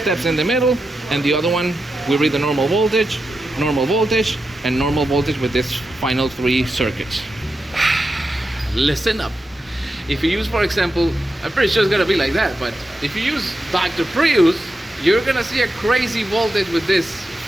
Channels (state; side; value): normal; both; correlation 0.88